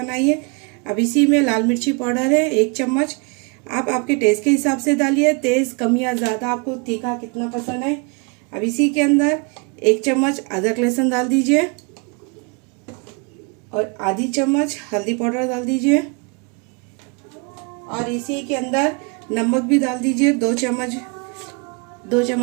अब इसी में लाल मिर्ची पाउडर है 1 चम्मच, आप आपके टेस्ट के हिसाब से डालिए, तेज़ कम या ज़्यादा, आपको तीखा कितना पसंद है। अब इसी के अंदर 1 चम्मच अदरक लहसुन डाल दीजिए और आधी चम्मच हल्दी पाउडर डाल दीजिए और इसी के अंदर नमक भी डाल दीजिए। 2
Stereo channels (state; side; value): quieter; left; 33.1 dB